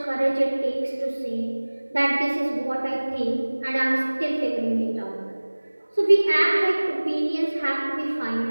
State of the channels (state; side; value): inverted; both; correlation -1.00